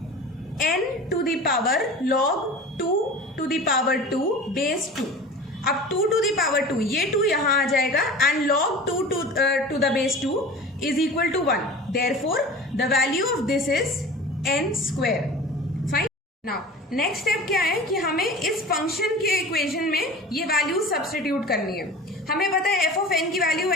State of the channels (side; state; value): both; normal; correlation 0.37